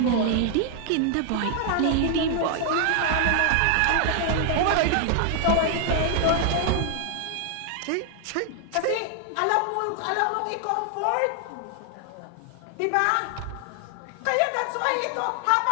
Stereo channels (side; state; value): both; different; correlation 0.00